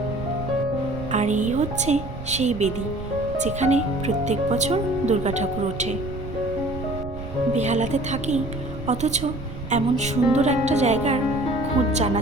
আর এই হচ্ছে সেই বেদি যেখানে প্রত্যেক বছর দুর্গা ঠাকুর ওঠে। বেহালাতে থাকি, অথচ এমন সুন্দর একটা জায়গার খোঁজ জানা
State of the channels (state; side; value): noise; right; rumble, 10 dB below the sound